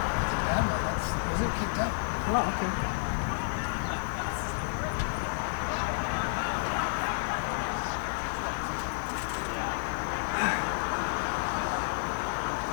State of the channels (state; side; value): silent; right; digital silence